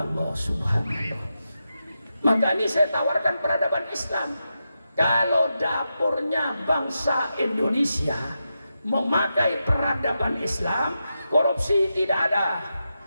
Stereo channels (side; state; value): both; inverted; correlation -0.88